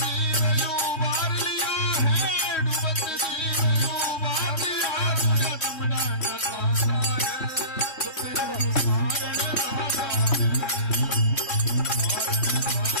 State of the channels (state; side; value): late; right; 3.1 ms